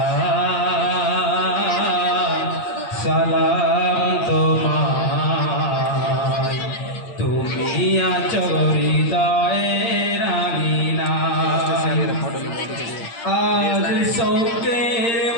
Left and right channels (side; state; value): right; late; 8.7 ms